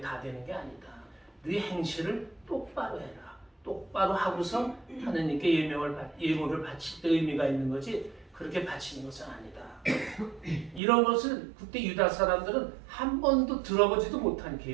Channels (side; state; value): left; drops out; at 10.8 s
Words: 되는 게 아니다. 네 행실을 똑바로 해라. 똑바로 하고서 하느님께 예물을 바칠 때 의미가 있는 거지 그렇게 바치는 것은 아니다. 이런 것을 그때 유다 사람들은 한 번도 들어보지도 못한